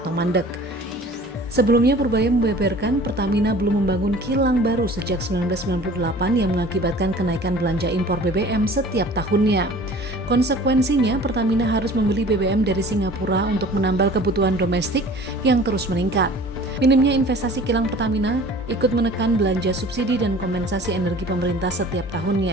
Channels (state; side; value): normal; both; correlation 0.46